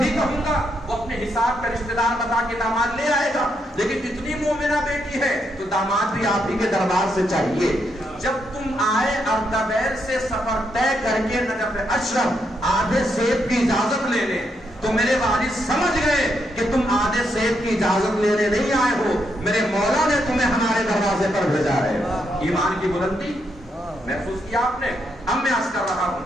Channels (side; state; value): both; normal; correlation 0.79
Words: کہوں گا وہ اپنے حساب کا رشتہ دار بتا کے داماد لے آئے گا. لیکن اتنی مومنہ بیٹی ہے تو داماد بھی آپ ہی کے دربار سے چاہیے. جب تم آئے اردبیل سے سفر طے کر کے نجف اشرف آدھے سیب کی اجازت لینے، تو میرے والد سمجھ گئے کہ تم آدھے سیب کی اجازت لینے نہیں آئے ہو، میرے مولا نے تمہیں ہمارے دروازے پر بھیجا ہے. ایمان کی بلندی محسوس کیا آپ نے؟ اب میں عرض کر رہا